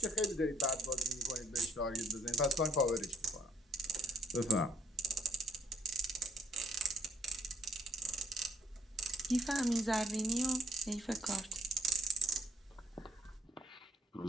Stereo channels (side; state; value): both; normal; correlation 0.67